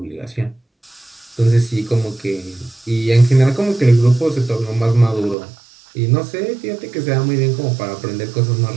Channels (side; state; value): left; drops out; at 5.4 s